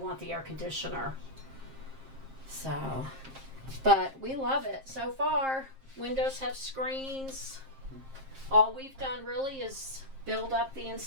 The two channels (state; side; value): late; left; 7.5 ms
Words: the air conditioner. So, but we love it so far. Windows have screens. All we've done really is build up the